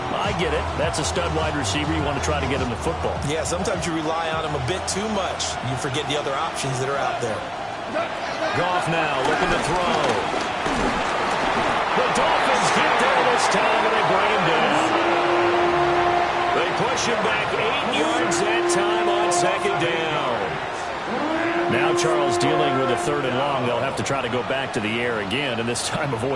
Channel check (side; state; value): both; identical; correlation 1.00